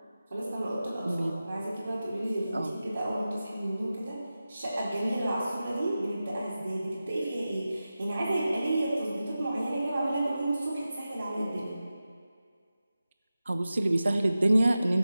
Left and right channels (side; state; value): both; inverted; correlation -0.94